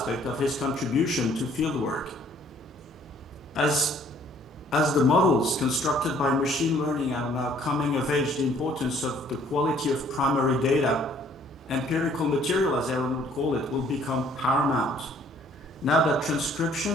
of his contribution to fieldwork. As the models constructed by machine learning are now coming of age, the importance of the quality of primary data, empirical material as Aaron would call it, will become paramount. Now that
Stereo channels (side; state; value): both; normal; correlation 0.60